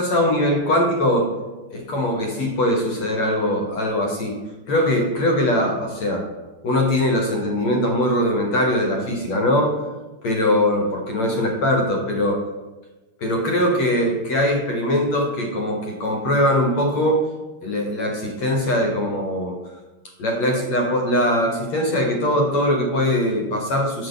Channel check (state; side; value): late; right; 8.8 ms